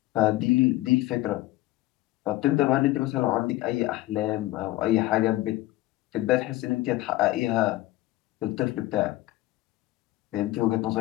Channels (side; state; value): right; quieter; 17.5 dB